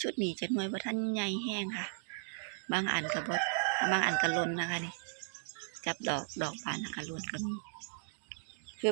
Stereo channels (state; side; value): silent; left; digital silence